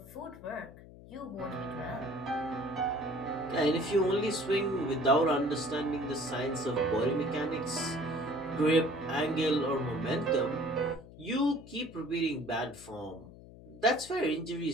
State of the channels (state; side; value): noise; left; hum, 18 dB below the sound